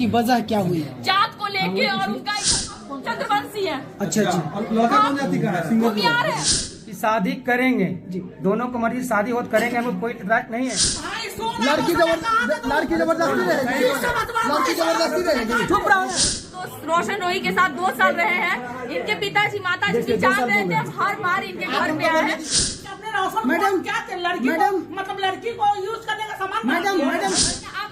वजह क्या हुई? जात को लेके और उनका चंद्रवंशी है। अच्छा अच्छा वो प्यार है। शादी करेंगे जी, दोनों को मर्जी शादी हो करेंगे, हमें कोई इतराज नहीं है। लड़की जबरदस्ती रहेगी। लड़की जबरदस्ती रहेगी। चुप रहो। तो रोशन रोही के साथ 2 साल रहे हैं। इनके पिताजी माताजी भी जान रहे थे, हर बार इनके घर पे आए हैं। मैडम क्या लड़की मैडम मतलब लड़की को यूज करने का सामान मैडम आप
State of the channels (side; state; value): both; identical; correlation 1.00